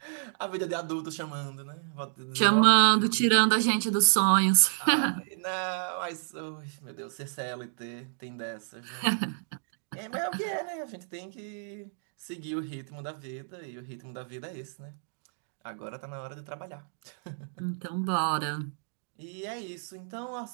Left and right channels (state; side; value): silent; left; digital silence